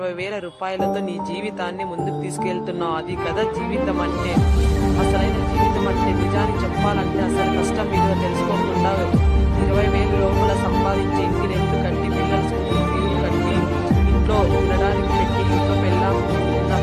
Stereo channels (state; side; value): identical; both; correlation 1.00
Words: రూపాయలతో నీ జీవితాన్ని ముందుకు తీసుకెళ్తున్నావు. అది కదా జీవితం అంటే. అసలైన జీవితం అంటే నిజాన్ని చెప్పాలంటే అసలు కష్టం విలువ తెలుసుకోకుండా 20,000 లోపల సంపాదించి ఇంటి రెంట్ కట్టి పిల్లల స్కూల్ ఫీజులు కట్టి ఇంట్లో ఉండడానికి పెట్టి ఇంట్లో నా